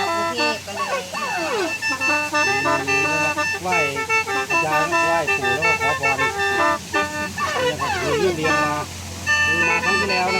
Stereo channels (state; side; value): identical; both; correlation 1.00